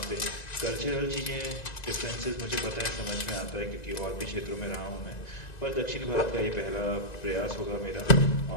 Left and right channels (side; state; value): right; late; 2.0 ms